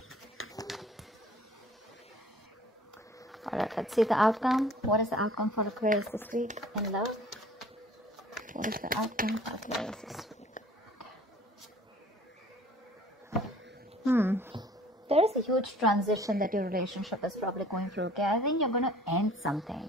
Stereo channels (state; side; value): normal; both; correlation 0.52